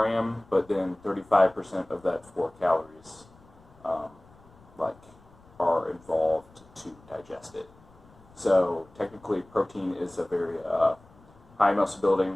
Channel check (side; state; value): left; noise; rumble, 26 dB below the sound